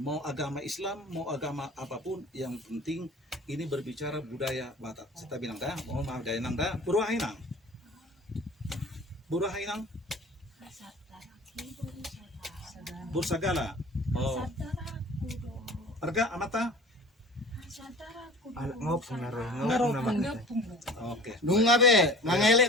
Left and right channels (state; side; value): normal; both; correlation 0.42